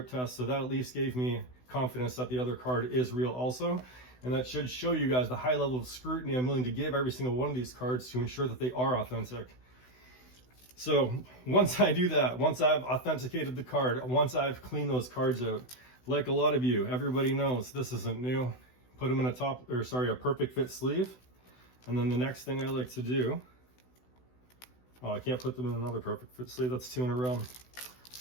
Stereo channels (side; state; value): right; late; 16 ms